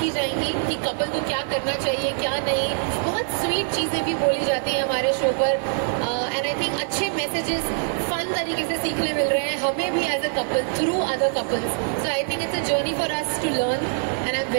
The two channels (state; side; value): silent; left; digital silence